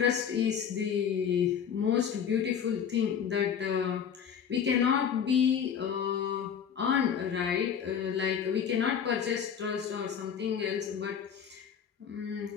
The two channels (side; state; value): right; quieter; 7.8 dB